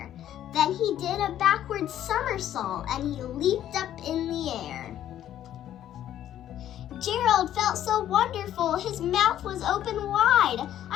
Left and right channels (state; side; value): quieter; right; 11.5 dB